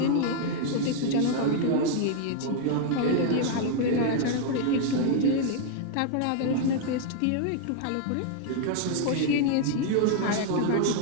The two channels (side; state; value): both; different; correlation 0.00